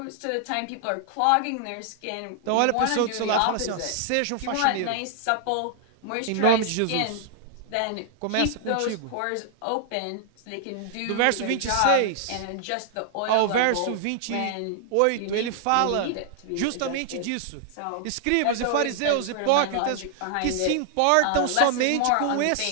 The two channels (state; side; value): different; both; correlation 0.00